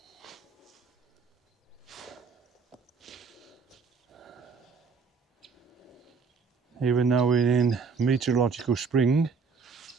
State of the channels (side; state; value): left; quieter; 5.1 dB